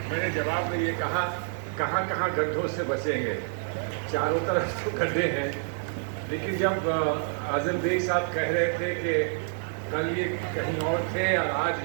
میں نے جواب میں یہ کہا کہاں کہاں گڈھوں سے بچیں گے، چاروں طرف تو گڈھے ہیں۔ لیکن جب اعظم بیگ صاحب کہہ رہے تھے کہ کل یہ کہیں اور تھے اور آج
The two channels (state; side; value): silent; left; 55 dB below the other